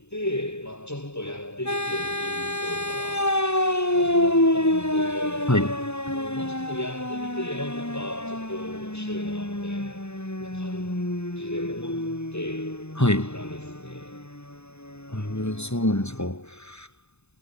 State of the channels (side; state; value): right; late; 0.81 ms